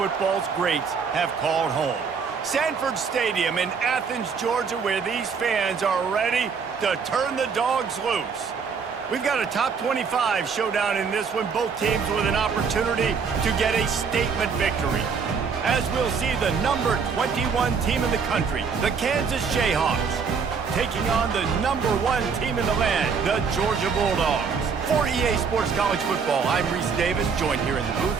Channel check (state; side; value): quieter; left; 5.8 dB